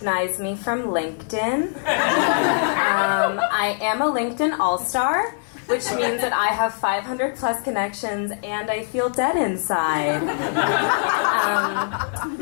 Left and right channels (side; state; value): right; silent; 60 dB below the other